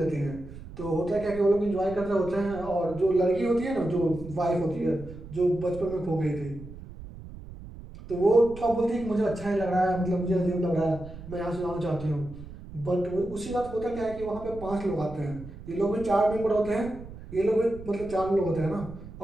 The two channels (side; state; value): right; noise; rumble, 15 dB below the sound